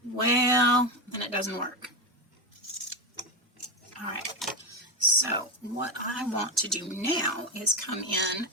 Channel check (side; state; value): both; normal; correlation 0.14